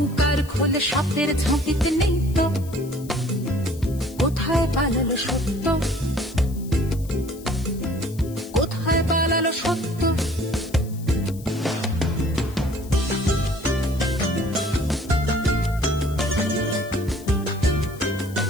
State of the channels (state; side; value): noise; left; hiss, 20 dB below the sound